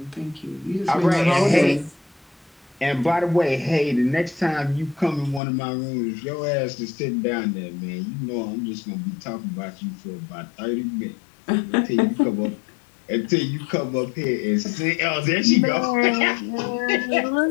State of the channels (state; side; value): drops out; right; at 5.4 s